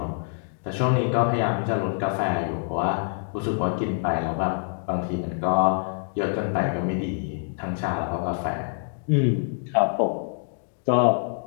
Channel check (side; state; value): right; silent; digital silence